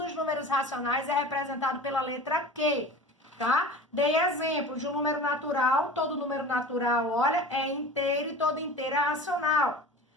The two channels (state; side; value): normal; both; correlation 0.37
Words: números racionais é representado pela letra Q, tá? Dei exemplo de um número natural, todo número natural, olha, é inteiro e todo inteiro é racional.